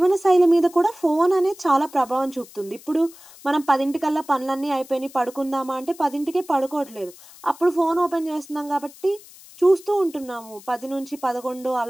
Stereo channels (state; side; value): noise; left; hiss, 21 dB below the sound